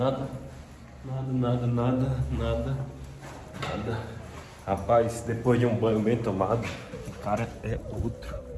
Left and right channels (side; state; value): both; identical; correlation 1.00